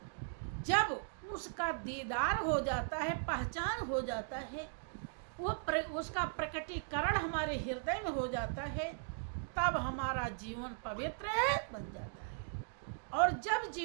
जब उसका दीदार हो जाता है, पहचान हो जाता है, उसका प्रकटीकरण हमारे हृदय में हो जाता है, तब हमारा जीवन पवित्र बन जाता है। और जब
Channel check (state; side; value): silent; left; digital silence